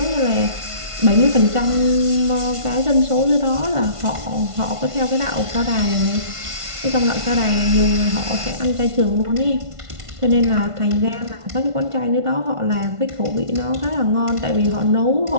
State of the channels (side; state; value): left; late; 1.5 ms